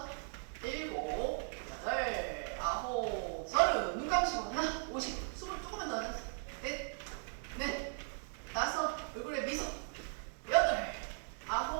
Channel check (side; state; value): left; silent; 52 dB below the other